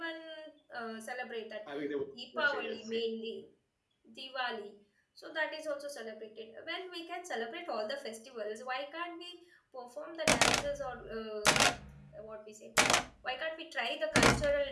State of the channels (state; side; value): identical; both; correlation 1.00